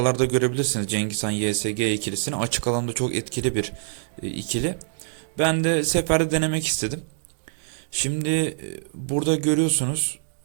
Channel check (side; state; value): left; silent; digital silence